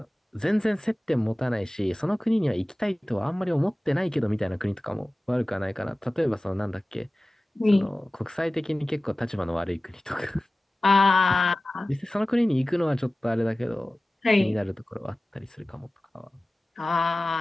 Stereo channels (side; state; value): both; normal; correlation 0.97